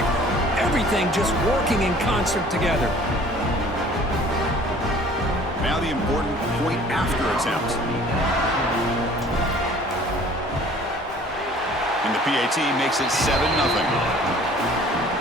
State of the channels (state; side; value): normal; both; correlation 0.51